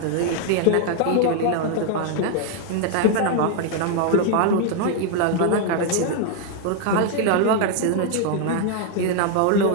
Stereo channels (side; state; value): both; different; correlation 0.00